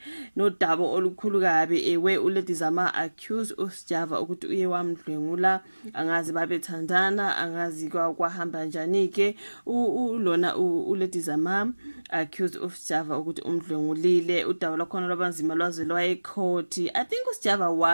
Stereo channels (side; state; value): both; inverted; correlation -1.00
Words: nodaba olukhulu kabi ewe uLady Zama accused uSjava ukuthi uye wamdlwengula, angazi babethandana, angazi kwahamba njani ke. Lona uLady Zama accused uSjava ukuthi umdlwengulile. Udaba lwakhona lwabanzima lwaze lwayecourt. I think uSjava